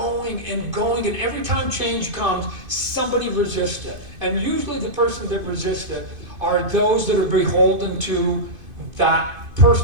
and every time change comes, somebody resists it. And usually the person that resists it are those that are beholden to that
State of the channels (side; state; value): left; late; 2.5 ms